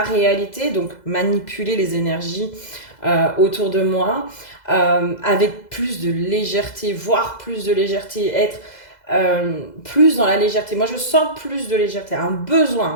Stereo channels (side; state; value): right; late; 2.0 ms